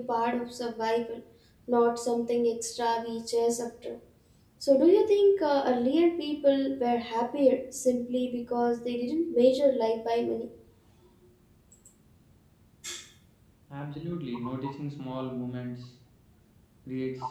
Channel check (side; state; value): both; identical; correlation 1.00